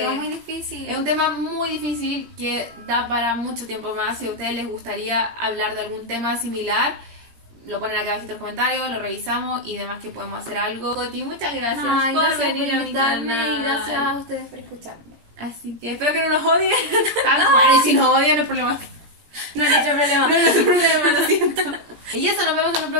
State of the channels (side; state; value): left; late; 17 ms